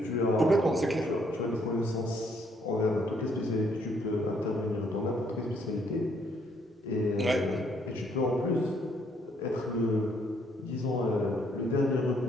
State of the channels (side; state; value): both; normal; correlation 0.69